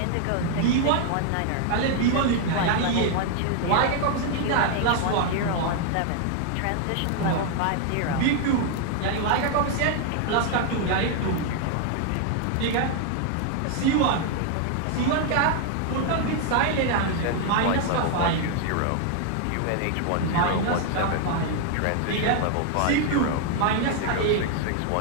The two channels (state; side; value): different; both; correlation 0.00